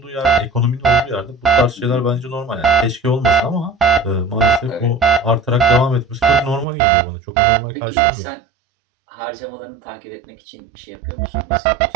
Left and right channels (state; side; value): drops out; left; at 6.7 s